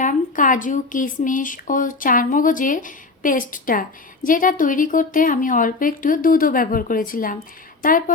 কাজু, কিশমিশ ও চারমগজের পেস্টটা, যেটা তৈরি করতে আমি অল্প একটু দুধও ব্যবহার করেছিলাম।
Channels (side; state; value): right; quieter; 3.8 dB